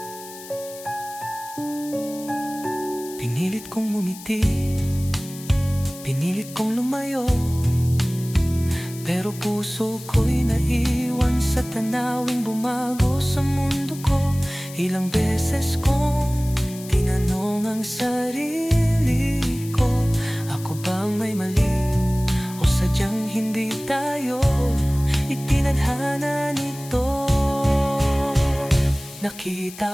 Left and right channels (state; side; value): noise; left; hiss, 16 dB below the sound